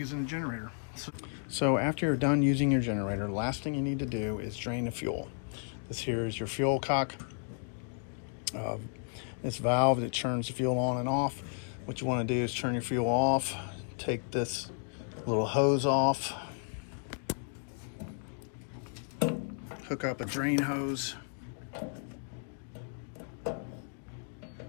the generator. So after you're done using your generator, the last thing you need to do is drain the fuel. This here is your fuel cock. This valve that turns the fuel on and off. What you want to do is turn your fuel off, take this little hose off, hook up a drain hose,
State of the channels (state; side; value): silent; right; 56 dB below the other